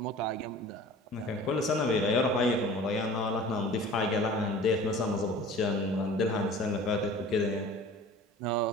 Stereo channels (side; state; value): both; normal; correlation 0.43